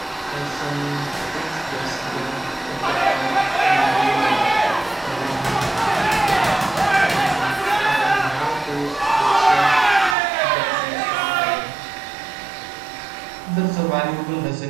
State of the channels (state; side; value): drops out; left; at 10.2 s